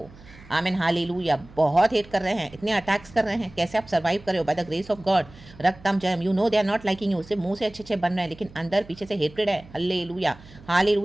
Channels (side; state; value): right; noise; hum, 21 dB below the sound